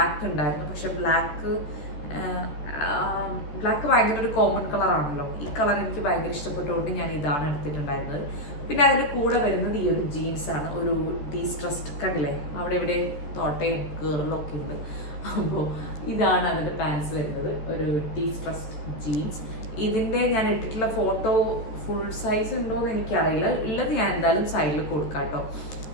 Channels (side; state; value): right; late; 14 ms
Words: ഉണ്ടായിരുന്നു. പക്ഷെ ബ്ലാക്ക് ഭയങ്കര ഒരു കോമൺ കളറാണല്ലോ. ഈ കളർ എനിക്ക് ഭയങ്കര ഇഷ്ടപ്പെട്ടുകൊണ്ട് ഞാൻ ഇതാണ് എടുത്തിട്ടുണ്ടായിരുന്നത്. പിന്നെ അതിൻ്റെ കൂടെ വരുന്നത് ഈ ഒരു ജീൻസാണ്, ഒരു ഡീസ്ട്രസ്ഡ്, കണ്ടില്ലേ അവിടെ ഇവിടെ തോട്ടയും കീറലൊക്കെ ഉണ്ട്. അപ്പോൾ ഇതാണ് അതിൻ്റെ പാൻസ് വരുന്നത്, ഒരു ഡീസ്ട്രസ്ഡ് ജീൻസ്. ഇതിൻ്റെ ഞാൻ ഇട്ടിട്ടുള്ള ഫോട്ടോ ഫുൾ സൈസ് ഉണ്ടോയെന്ന് എനിക്കറിയില്ല, ഉള്ളത് ഞാൻ എന്തായാലും സൈഡിൽ കൊടുക്കാം കേട്ടോ.